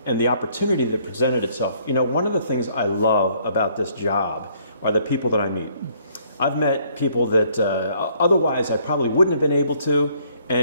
the opportunity that presented itself. You know, one of the things I love about this job are the people that I meet. I've met people that otherwise I probably wouldn't have been able to,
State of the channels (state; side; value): inverted; both; correlation -0.64